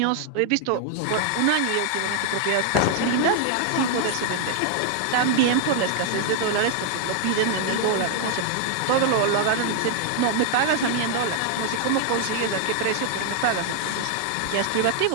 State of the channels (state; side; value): different; both; correlation 0.00